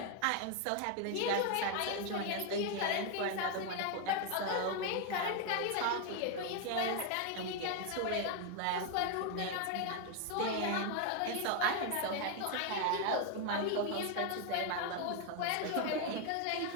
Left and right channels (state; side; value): different; both; correlation 0.01